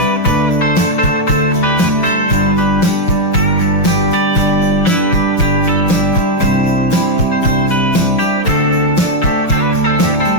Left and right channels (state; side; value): late; right; 6.1 ms